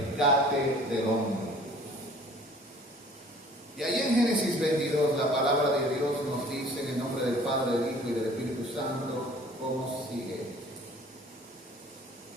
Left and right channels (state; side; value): normal; both; correlation 0.51